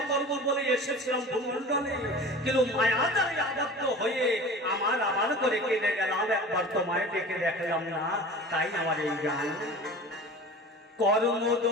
করব বলে এসেছিলাম ভূমণ্ডলে, কিন্তু মায়া দ্বারে আবদ্ধ হয়ে আমার করে কেঁদে গেলাম, একবার তোমায় ডেকে দেখলাম না, তাই আমার এই গান। কর্ম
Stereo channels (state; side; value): normal; both; correlation 0.38